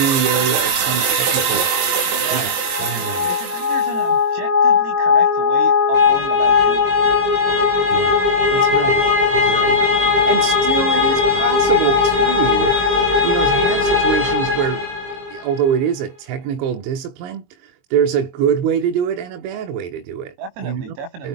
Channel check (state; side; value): late; left; 22 ms